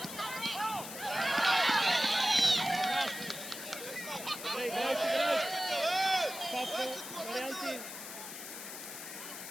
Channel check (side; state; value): left; noise; hiss, 9 dB below the sound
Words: Добре, играеш, играеш! Папко, варианти!